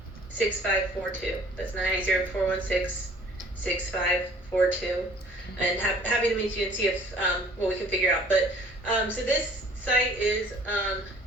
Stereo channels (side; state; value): both; normal; correlation 0.54